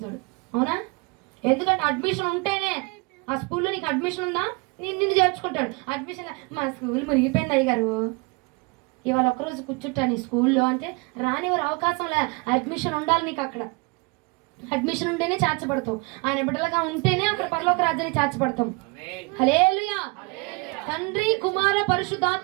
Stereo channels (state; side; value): quieter; left; 29.0 dB